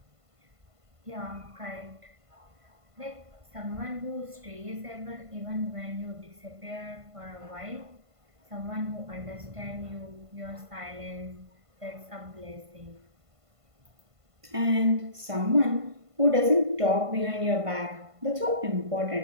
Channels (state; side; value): late; left; 1.5 ms